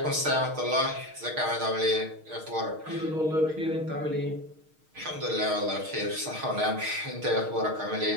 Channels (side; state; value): left; late; 6.5 ms